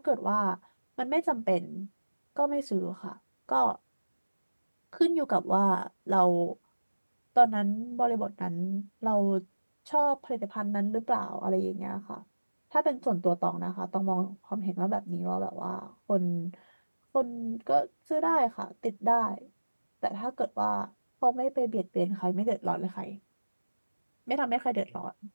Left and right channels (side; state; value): both; inverted; correlation -1.00